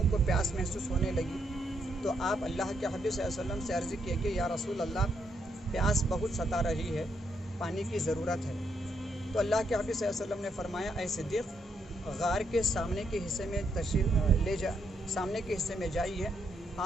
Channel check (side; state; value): both; normal; correlation 0.77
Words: کو پیاس محسوس ہونے لگی، تو آپ اللہ کے حبیب صلی اللہ علیہ وسلم سے عرض کیے کہ یا رسول اللہ پیاس بہت ستا رہی ہے، پانی کی ضرورت ہے۔ تو اللہ کے حبیب صلی اللہ علیہ وسلم نے فرمایا اے صدیق غار کے سامنے کے حصے میں سامنے کے حصے میں جائیے،